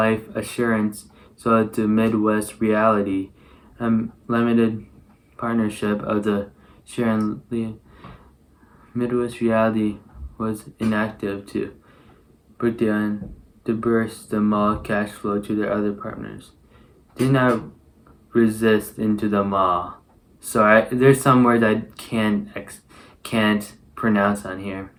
Assurance sold to Midwest Reality, a limited partnership of the Sharon Lee. Midwest Reality was inactive too. Brookdale dispersed the mall cash flow to their other partners. Did not resist into the mall. So there's some words I can't pronounce on here.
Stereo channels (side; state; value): both; identical; correlation 1.00